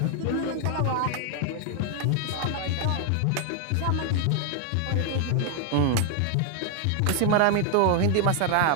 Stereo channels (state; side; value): different; both; correlation 0.00